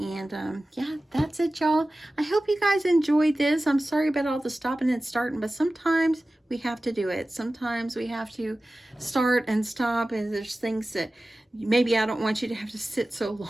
yeah, that's it, y'all. I hope you guys enjoyed this. I'm sorry about all the stopping and starting, but sometimes we have to do it. Sometimes we have to start and stop, and there's things that maybe I don't want you to have to sit so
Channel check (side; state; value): both; normal; correlation 0.96